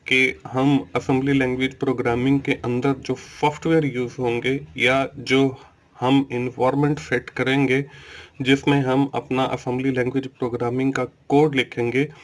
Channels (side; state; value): both; identical; correlation 1.00